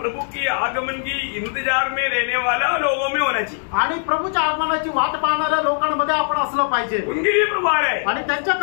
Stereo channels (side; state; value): right; silent; digital silence